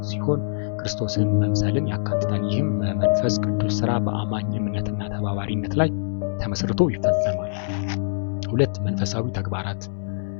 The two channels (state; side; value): silent; right; digital silence